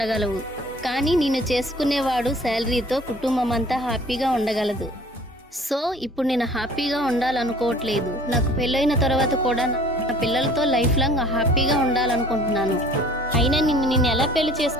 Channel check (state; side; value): normal; both; correlation 0.50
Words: కానీ నేను చేసుకునేవాడు శాలరీతో కుటుంబం అంతా హ్యాపీగా ఉండగలదు. సో ఇప్పుడు నేను హ్యాపీగా ఉండాలనుకోవట్లేదు. నాకు పెళ్ళైన తర్వాత కూడా నా పిల్లలతో లైఫ్ లాంగ్ హ్యాపీగా ఉండాలనుకుంటున్నాను. అయినా నిన్ను ఎలా పెళ్లి